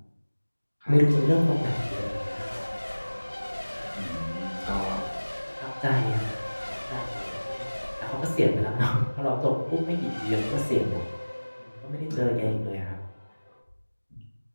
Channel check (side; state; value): both; inverted; correlation -1.00